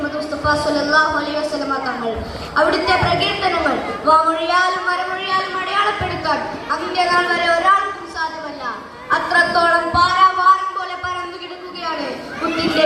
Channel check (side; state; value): both; identical; correlation 1.00